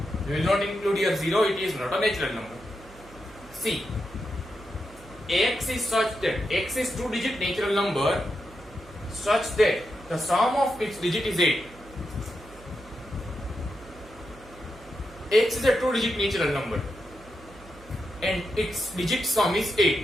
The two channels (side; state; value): right; noise; hum, 21 dB below the sound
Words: We will not include here 0, it is not a natural number. C, x is such that x is 2-digit natural number such that the sum of its digit is 8. X is a 2-digit natural number and its digit sum is